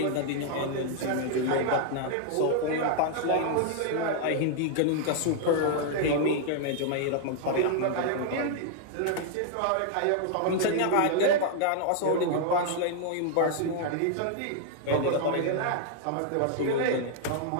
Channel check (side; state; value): both; different; correlation -0.01